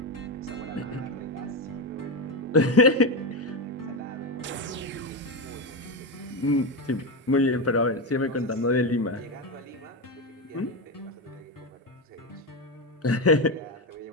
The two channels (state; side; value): normal; both; correlation 0.13